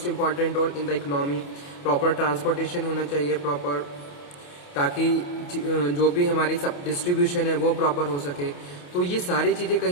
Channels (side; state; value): right; late; 28 ms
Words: important role in the economy. Proper transportation होना चाहिए प्रॉपर, ताकि जो भी हमारी सब डिस्ट्रीब्यूशन है वो प्रॉपर हो सके। तो ये सारी चीज़ें